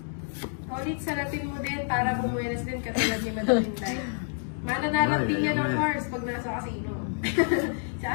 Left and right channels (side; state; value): right; silent; 59 dB below the other